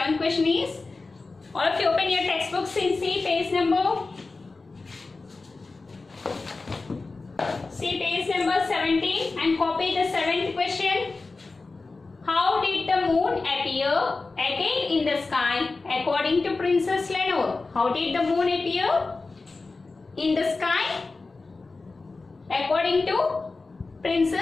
question is, all of you open your textbooks and see page number 17 and copy the 7th question. How did the moon appear again in the sky according to Princess Lenore? How did the moon appear in the sky according to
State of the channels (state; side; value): quieter; right; 3.7 dB